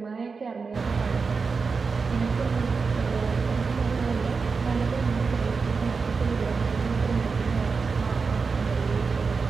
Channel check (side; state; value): left; quieter; 4.9 dB